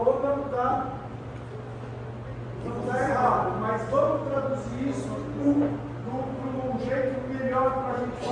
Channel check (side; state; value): both; identical; correlation 1.00